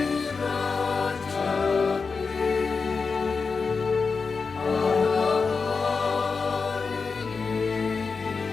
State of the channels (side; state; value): right; quieter; 4.8 dB